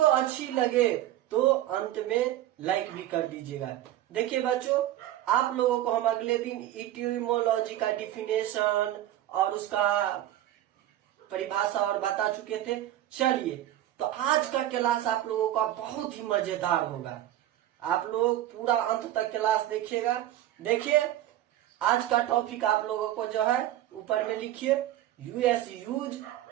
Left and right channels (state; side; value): quieter; left; 13.3 dB